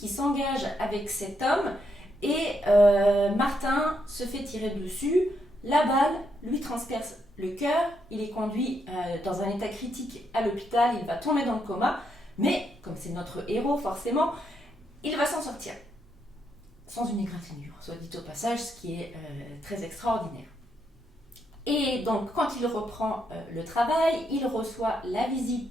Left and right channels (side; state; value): both; normal; correlation 0.78